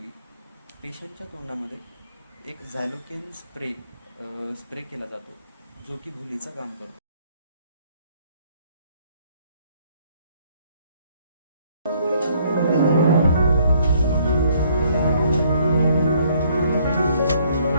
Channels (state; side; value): inverted; both; correlation -0.65